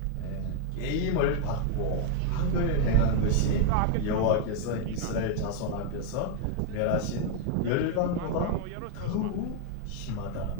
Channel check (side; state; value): both; different; correlation 0.00